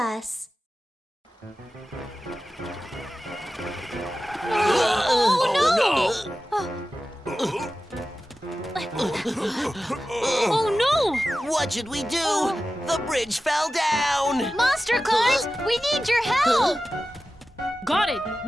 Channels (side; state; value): both; normal; correlation 0.94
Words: Oh no! What should we do? The bridge fell down! Monster Claus, we need your help! Got it!